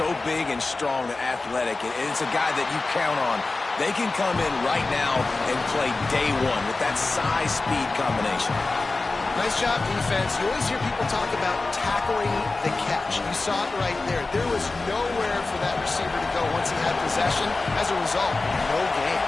big and strong and athletic. And it's a guy that you count on. They can come in right now and play day one with that size-speed combination. Nice job, defense. You always hear people talk about tackling the catch. You saw it right there. There was nowhere for that receiver to go once he had possession. As a result, no gain.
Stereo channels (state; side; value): quieter; right; 3.5 dB